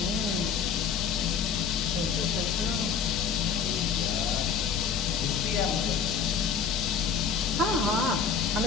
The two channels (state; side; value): quieter; right; 6.5 dB